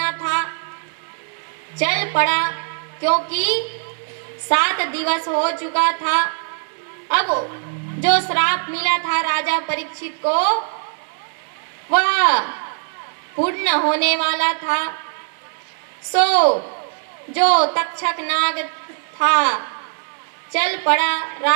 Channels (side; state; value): left; silent; 65 dB below the other